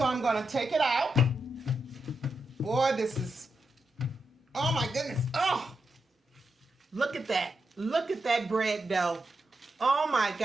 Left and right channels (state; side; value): normal; both; correlation 0.86